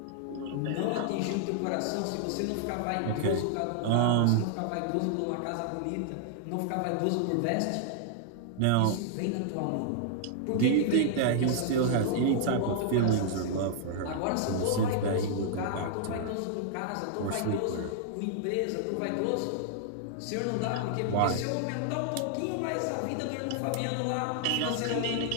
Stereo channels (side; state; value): both; different; correlation -0.01